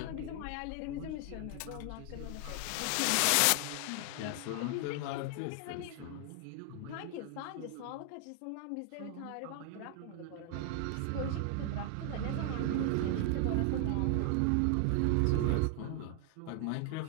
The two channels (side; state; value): both; different; correlation 0.00